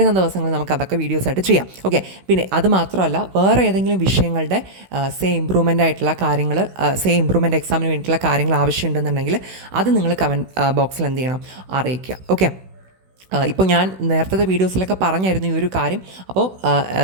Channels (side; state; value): left; late; 16 ms